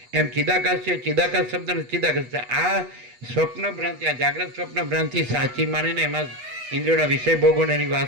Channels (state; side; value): late; left; 8.2 ms